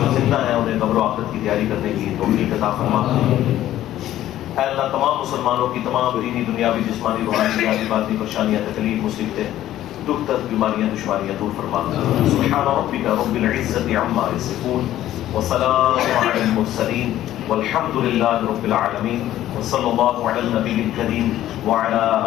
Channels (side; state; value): right; quieter; 13.2 dB